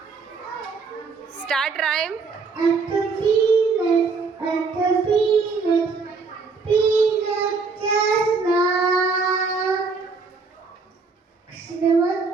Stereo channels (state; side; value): quieter; left; 4.6 dB